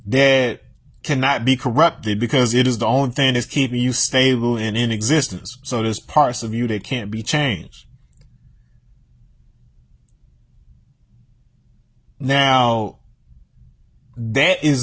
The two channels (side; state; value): both; identical; correlation 1.00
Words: that cannot be corrupted because it is the only thing that's keeping you stable and in existence. So there's parts of you that can't be changed. Now, that